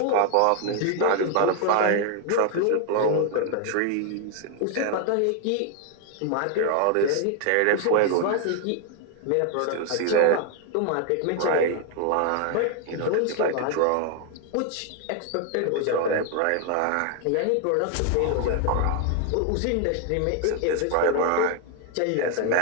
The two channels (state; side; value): different; both; correlation 0.00